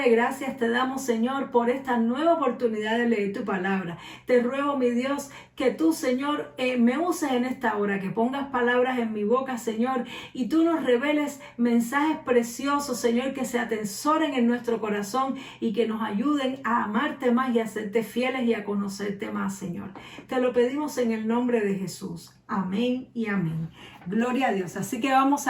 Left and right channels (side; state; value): both; identical; correlation 1.00